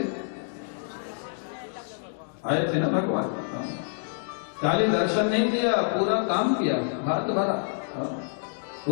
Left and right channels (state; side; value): silent; right; digital silence